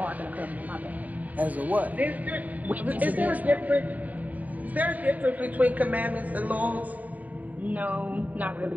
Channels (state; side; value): late; left; 0.075 ms